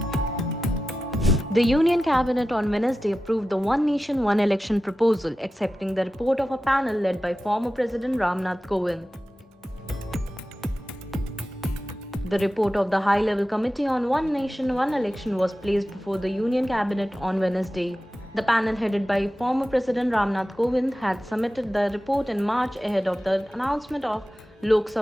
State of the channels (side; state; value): both; normal; correlation 0.94